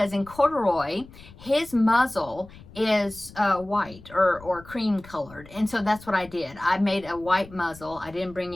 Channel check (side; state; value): left; noise; rumble, 20 dB below the sound